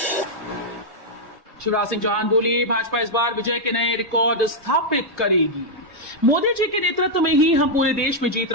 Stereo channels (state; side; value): normal; both; correlation -0.03